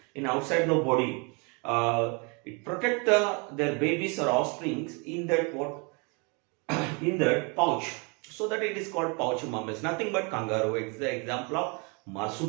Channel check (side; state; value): left; quieter; 32.3 dB